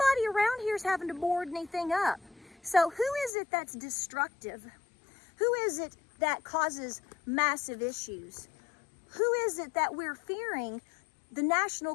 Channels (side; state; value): right; drops out; at 3.3 s